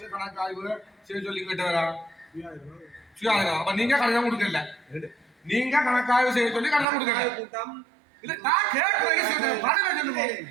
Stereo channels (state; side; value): drops out; left; at 6.9 s